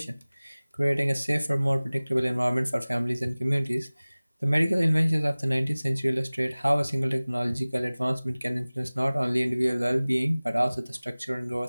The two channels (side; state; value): both; inverted; correlation -0.99